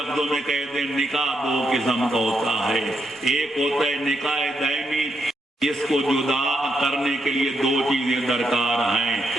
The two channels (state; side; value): normal; both; correlation 0.80